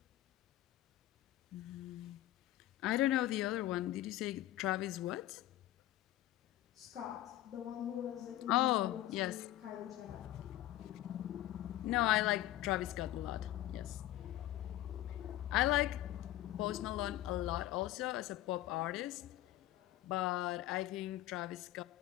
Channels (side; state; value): right; quieter; 14.7 dB